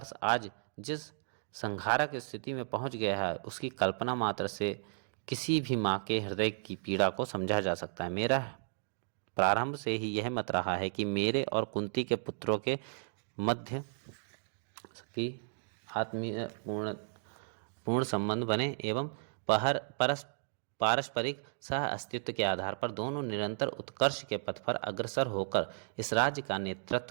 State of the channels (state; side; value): silent; left; digital silence